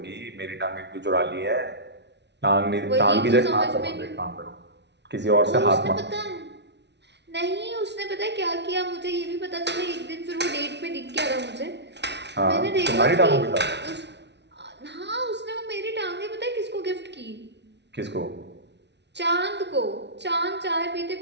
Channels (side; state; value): left; late; 0.50 ms